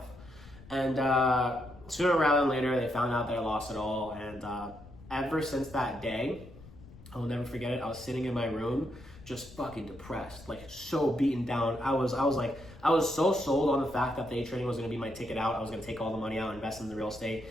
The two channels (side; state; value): left; noise; rumble, 19 dB below the sound